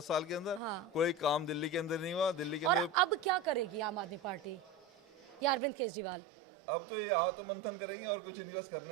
साल के अंदर। कोई काम दिल्ली के अंदर नहीं हुआ। दिल्ली के और अंदर अब क्या करेगी आम आदमी पार्टी या अरविंद केजरीवाल? अब तो ये आत्ममंथन करेंगे, और कुछ इन्वेस्ट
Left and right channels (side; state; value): left; drops out; at 5.6 s